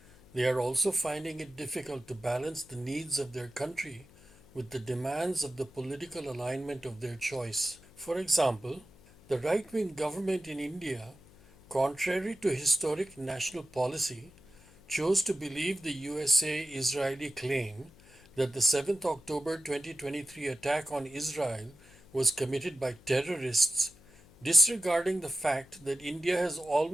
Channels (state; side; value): noise; left; hum, 25 dB below the sound